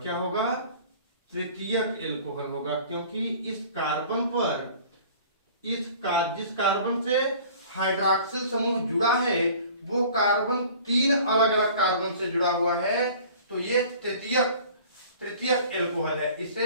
क्या होगा? तृतीयक एल्कोहल होगा, क्योंकि इस कार्बन पर जिस कार्बन से हाइड्रॉक्सिल समूह जुड़ा है वो कार्बन तीन अलग अलग कार्बन से जुड़ा हुआ है, तो ये तृतीयक एल्कोहल है।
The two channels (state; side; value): inverted; both; correlation -0.47